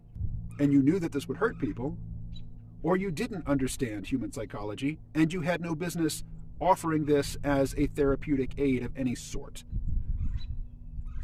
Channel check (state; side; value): identical; both; correlation 1.00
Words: and you knew that this would hurt people, or you didn't understand human psychology and you had no business offering this as a therapeutic aid of any sort.